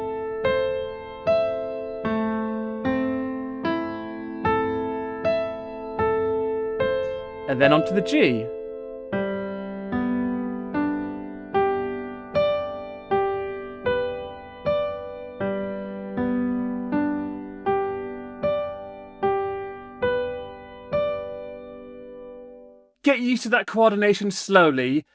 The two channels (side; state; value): both; identical; correlation 1.00